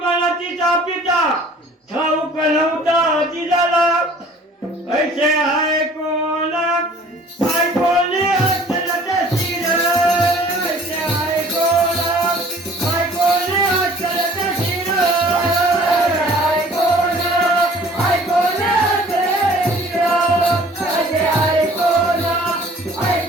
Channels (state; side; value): normal; both; correlation 0.52